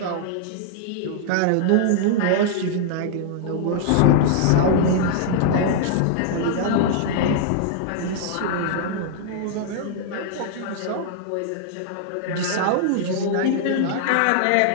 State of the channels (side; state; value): both; different; correlation -0.01